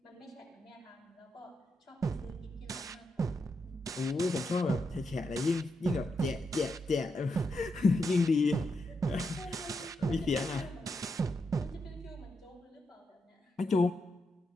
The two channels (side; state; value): both; normal; correlation 0.83